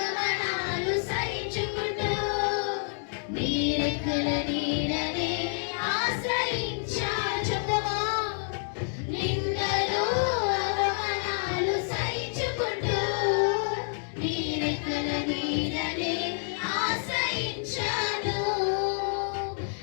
సహించుకుంటూ నీరెక్కల నీడనే ఆశ్రయించాను. చెప్తావా? నిందలు అవమానాలు సహించుకుంటూ నీరెక్కల నీడనే ఆశ్రయించాను.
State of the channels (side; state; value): right; silent; 59 dB below the other